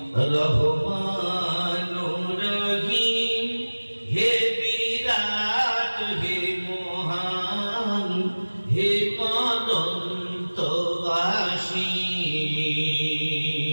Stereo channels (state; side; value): inverted; both; correlation -1.00